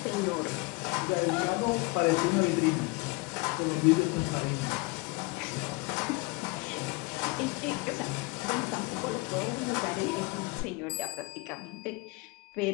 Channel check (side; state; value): right; quieter; 26.4 dB